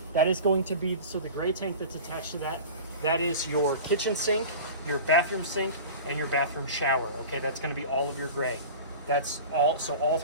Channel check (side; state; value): both; inverted; correlation -0.35